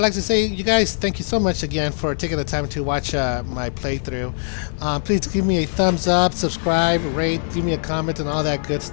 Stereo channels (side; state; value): right; silent; digital silence